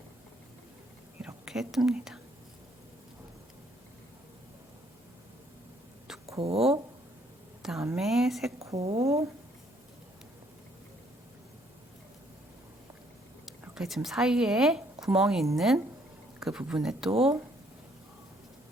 이렇게 뜹니다. 2코, 그 다음에 3코, 이렇게 지금 사이에 구멍이 있는 그 부분에 또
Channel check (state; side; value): normal; both; correlation 0.66